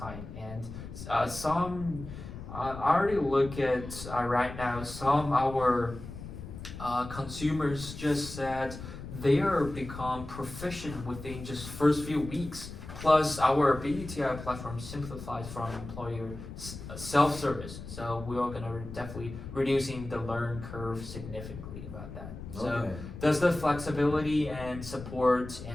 And some, I already look at right now, some our consumers just said they are become proficient within just first few weeks. Plus, our BUTI platform simplifies from employer self-service, so we are gonna definitely reducing the learn curve significantly about that. So, Okay. does the flexibility and support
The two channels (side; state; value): left; noise; rumble, 11 dB below the sound